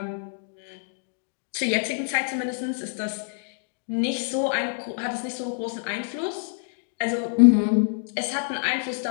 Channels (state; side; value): silent; right; digital silence